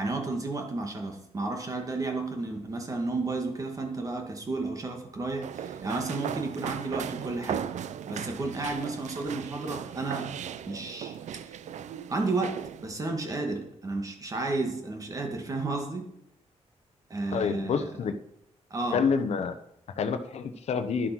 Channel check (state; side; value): normal; both; correlation 0.61